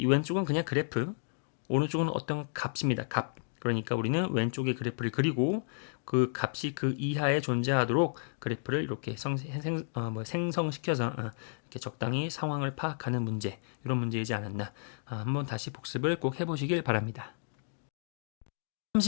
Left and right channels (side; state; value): right; silent; digital silence